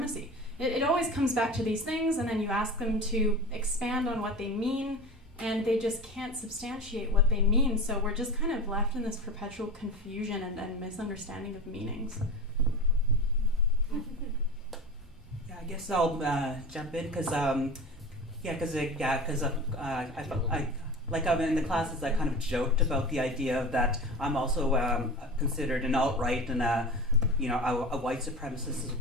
It always comes back to these things, and then you ask them to expand on what they mean, and they just can't substantiate what they mean. So we're just kind of left in this perpetual confusion and misunderstanding of meanings. Yeah, I guess I'll jump in because I'm in the classes. I kind of joked about the idea that I'm also considered an alt-right and a white supremacist as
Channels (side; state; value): both; normal; correlation 0.31